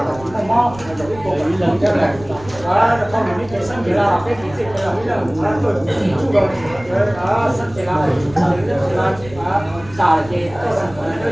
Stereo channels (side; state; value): right; noise; rumble, 18 dB below the sound